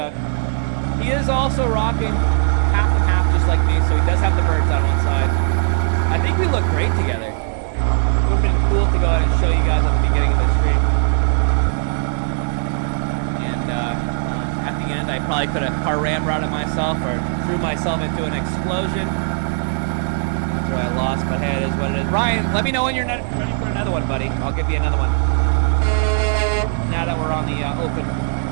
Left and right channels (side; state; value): left; silent; digital silence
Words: He is also rocking half and half just like me, so he does have the birds on one side. I think we look great together. It would have been cool to go ahead and show you guys at the beginning of the stream. And at the end, I probably could have car ramrodded myself or threw myself into an explosion. After I lost, but hey, it is what it is. Ryan, let me know when you're ready for another one, buddy. I'll give you another one. Now that we're on the